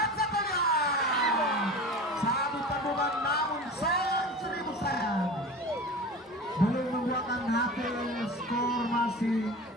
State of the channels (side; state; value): both; normal; correlation 0.34